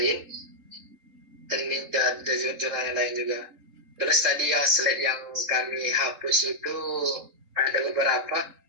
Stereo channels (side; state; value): left; late; 3.7 ms